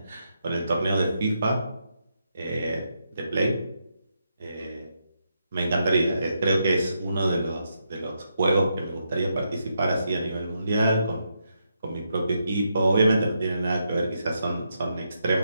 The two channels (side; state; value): both; inverted; correlation -0.81